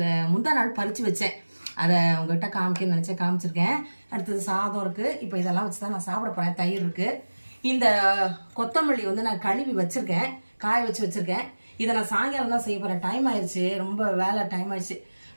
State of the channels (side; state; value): both; inverted; correlation -1.00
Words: முந்தா நாள் பறித்து வச்சேன். அதை உங்கள்கிட்ட காமிக்கணும்னு நினச்சேன், காமிச்சிருக்கேன். அடுத்தது சாதம் இருக்குது. இப்போ இதெல்லாம் வச்சு தான் நான் சாப்பிட போகிறேன். தயிர் இருக்குது. இந்த கொத்தமல்லி வந்து நான் கழுவி வச்சுருக்கேன், காய வச்சு வச்சுருக்கேன். இதை நான் சாயங்காலம் தான் செய்ய போகிறேன். டைம் ஆயிடுச்சு, ரொம்ப வேலை டைம் ஆயிடுச்சு.